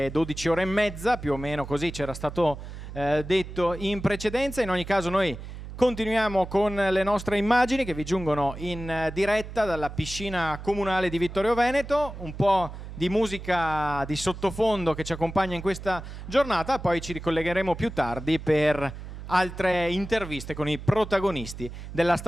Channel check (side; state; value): right; noise; hum, 11 dB below the sound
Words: 12 ore e mezza, più o meno così c'era stato detto in precedenza. In ogni caso noi continuiamo con le nostre immagini che vi giungono in diretta dalla piscina comunale di Vittorio Veneto, un po' di musica di sottofondo che ci accompagna in questa giornata, poi ci ricollegheremo più tardi per altre interviste con i protagonisti della